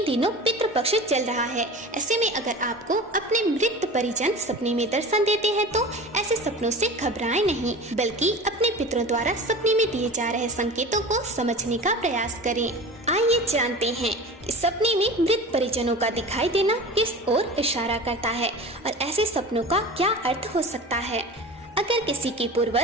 दिनों पितृपक्ष चल रहा है। ऐसे में अगर आपको अपने मृत परिजन सपने में दर्शन देते हैं तो ऐसे सपनों से घबराएं नहीं, बल्कि अपने पितरों द्वारा सपने में दिए जा रहे संकेतों को समझने का प्रयास करें। आइए जानते हैं कि सपने में मृत परिजनों का दिखाई देना किस ओर इशारा करता है और ऐसे सपनों का क्या अर्थ हो सकता है। अगर किसी के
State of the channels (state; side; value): normal; both; correlation 0.35